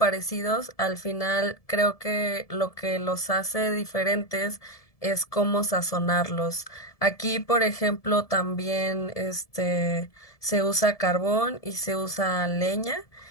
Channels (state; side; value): late; right; 1.7 ms